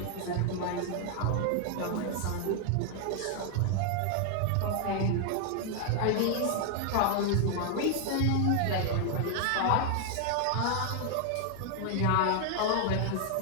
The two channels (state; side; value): different; both; correlation 0.00